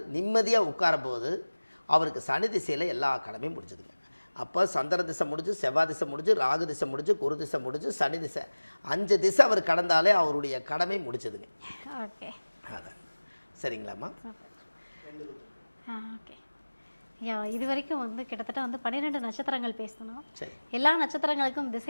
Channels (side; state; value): both; inverted; correlation -1.00